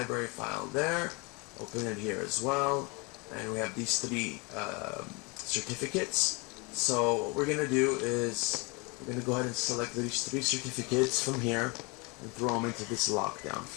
file there. Open it here as well. And we have these three certificates. So what we're going to do is we're going to go ahead and select these three certificates from here and throw them into this lockdown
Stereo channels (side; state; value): right; quieter; 29.2 dB